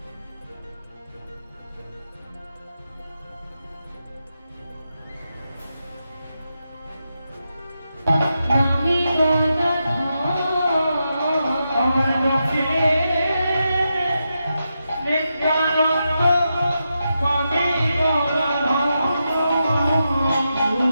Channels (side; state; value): both; inverted; correlation -0.87